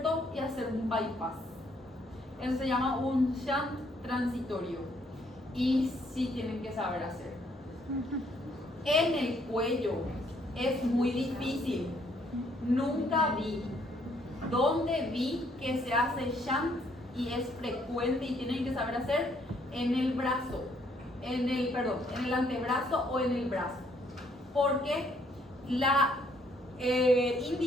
y hacer un bypass. Eso se llama un shunt transitorio y sí tienen que saber hacer. En el cuello es muy difícil. Nunca vi. ¿Dónde vi que se hace shunt y es frecuente y tienen que saber hacer? En el brazo, en el antebrazo o en el brazo. Porque la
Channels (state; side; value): normal; both; correlation 0.68